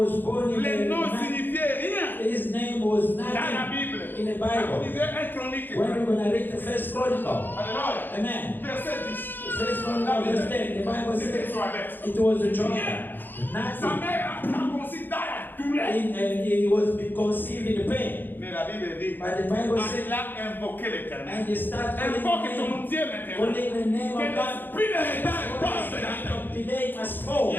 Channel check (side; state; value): right; late; 0.092 ms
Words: born in Les a noms man. signifiaient rien His name was dans la nothing Bible. in the Quand vous Bible. lisez un chronique, When we're going to read the first chronicle, Alléluia. amen. Verset 10. First chronicle, verse 10, the Bible C'était says Joël. it was a Sa child. Nothing. mère a conçu dans la douleur. And he was conceived in pain. Mais la Bible dit, But the Bible says, il a invoqué l'Éternel. and you start Invoque calling ton Dieu maintenant. calling the name Que of God. l'esprit de retard passe maintenant. Delay must Il fall. y